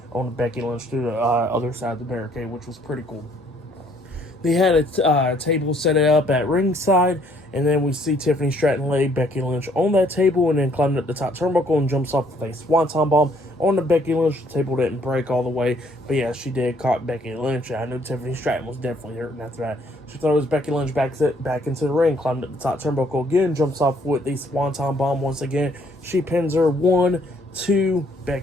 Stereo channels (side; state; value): both; normal; correlation 0.64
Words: on Becky Lynch to the other side of the barricade, which was pretty cool. They had a table set up at ringside, and then we see Tiffany Stratton lay Becky Lynch on that table and then climbed up the top turnbuckle and jumps off with a swanton bomb on the Becky Lynch. The table didn't break all the way, but yeah, she did caught Becky Lynch. I knew Tiffany Stratton was definitely hurting after that. She throws Becky Lynch back into the ring, climbed up the top turnbuckle again, jumps off with the swanton bomb once again. She pins her 1, 2.